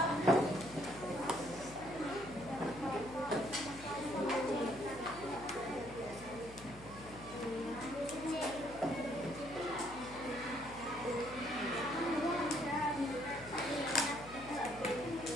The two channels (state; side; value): noise; left; hum, 16 dB below the sound